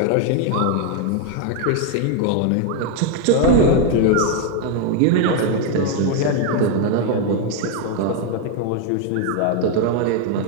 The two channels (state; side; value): different; both; correlation 0.01